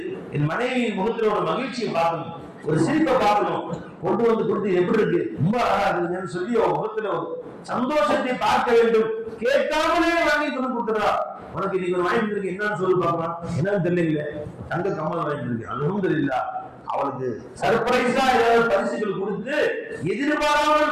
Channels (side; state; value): both; identical; correlation 1.00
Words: என் மனைவியின் முகத்துல ஒரு மகிழ்ச்சியை பார்க்கணும், ஒரு சிரிப்பை பார்க்கணும், கொண்டு வந்து கொடுத்து எப்படி இருக்கு ரொம்ப அழகா இருக்குன்னு சொல்லி அவன் முகத்துல ஒரு சந்தோஷத்தை பார்க்க வேண்டும். கேட்காமலே வாங்கி கொண்டு கொடுத்துறா, உனக்கு இன்னைக்கு ஒரு வாங்கிட்டு இருக்கு, என்னன்னு சொல்லி பார்க்கலாம், என்னன்னு தெரியல, தங்க கம்மல் வாங்கிட்டு இருக்கு, அல்ஹம்துலில்லாஹ். அவளுக்கு சர்ப்ரைஸா ஏதாவது பரிசுகள் கொடுத்து,